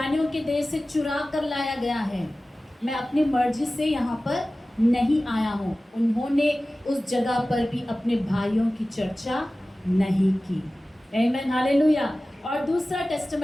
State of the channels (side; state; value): both; normal; correlation 0.96